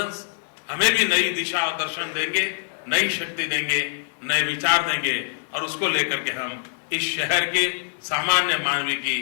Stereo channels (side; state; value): right; silent; 63 dB below the other